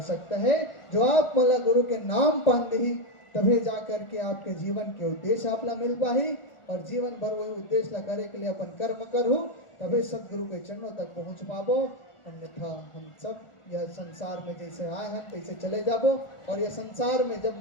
है। जो आप मल्ला गुरु के नाम पान दी तभी जा करके आपके जीवन के उद्देश्य आप ला मिल पाही और जीवन भर वही उद्देश्य ला करे के लिए अपन कर्म करूँ तभी सदगुरु के चरणों तक पहुँच पाबो। अन्यथा हम सब यह संसार में जैसे आए हैं तैसे चले जाबो और यह संसार में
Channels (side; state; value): right; late; 1.4 ms